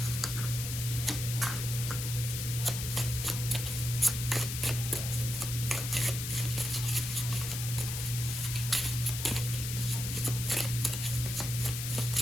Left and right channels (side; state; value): left; noise; hiss, 5 dB below the sound